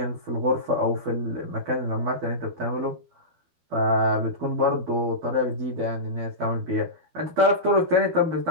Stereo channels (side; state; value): left; late; 12 ms